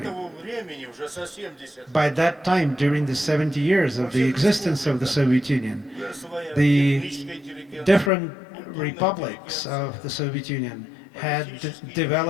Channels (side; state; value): right; drops out; at 8.1 s